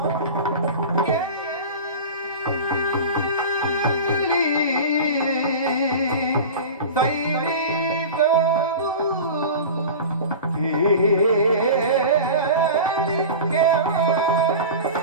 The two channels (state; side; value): inverted; both; correlation -0.32